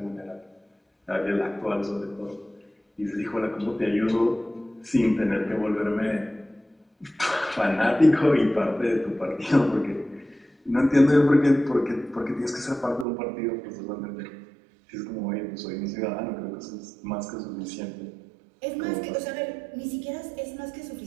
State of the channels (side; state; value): left; drops out; at 13.1 s